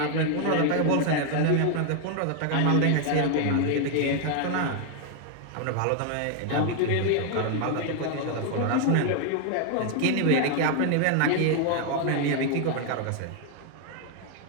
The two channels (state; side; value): different; both; correlation 0.00